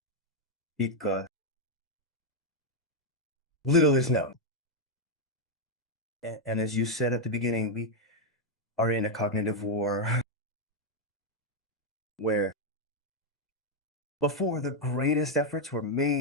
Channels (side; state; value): both; normal; correlation 0.01